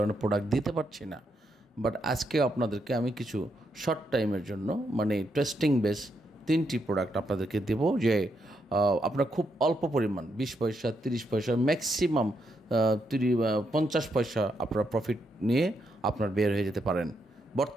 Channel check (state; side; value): normal; both; correlation 0.79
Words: প্রোডাক্ট দিতে পারছি না। বাট আজকে আপনাদেরকে আমি কিছু শর্ট টাইমের জন্য মানে টেস্টিং বেস 3টি প্রোডাক্ট আপনাদেরকে দেব যে আপনারা খুব অল্প পরিমাণ 20 পয়সা 30 পয়সা ম্যাক্সিমাম 50 পয়সা আপনারা প্রফিট নিয়ে আপনার বের হয়ে যেতে পারেন